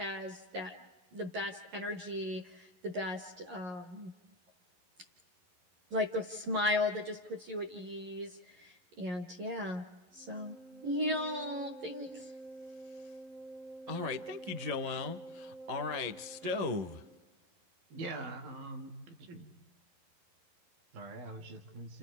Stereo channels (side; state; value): left; late; 11 ms